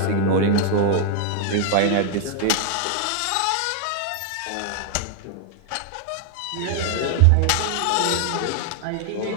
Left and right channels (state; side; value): different; both; correlation 0.00